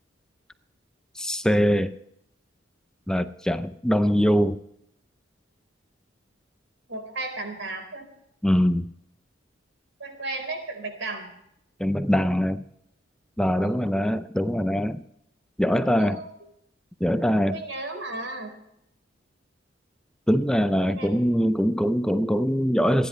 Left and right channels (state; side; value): normal; both; correlation 0.92